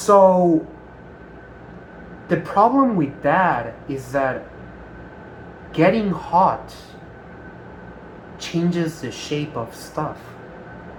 the problem with that is that getting hot changes the shape of stuff.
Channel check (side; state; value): both; identical; correlation 1.00